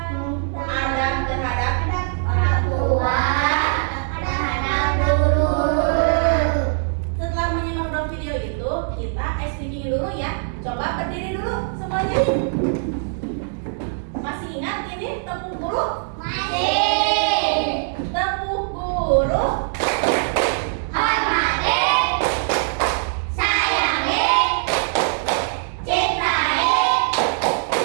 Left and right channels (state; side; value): silent; left; digital silence